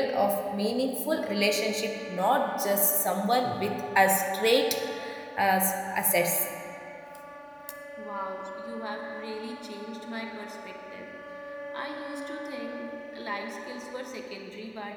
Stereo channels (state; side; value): identical; both; correlation 1.00